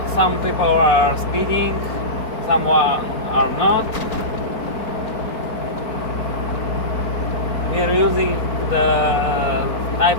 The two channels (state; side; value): late; right; 4.5 ms